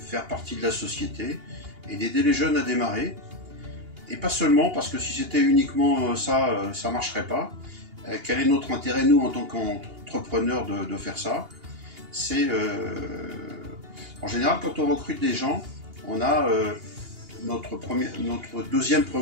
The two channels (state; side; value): late; left; 2.8 ms